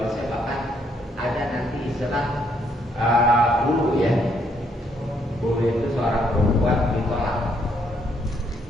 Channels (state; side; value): normal; both; correlation 0.71